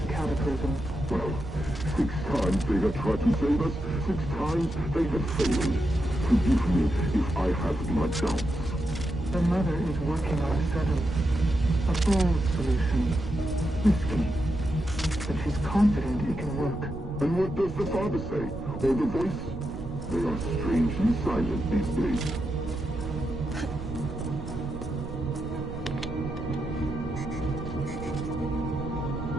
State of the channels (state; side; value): noise; right; rumble, 9 dB below the sound